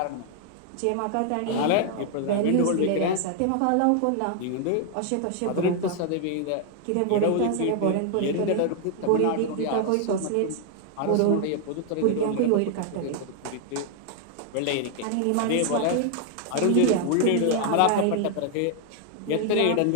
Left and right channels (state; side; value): different; both; correlation 0.00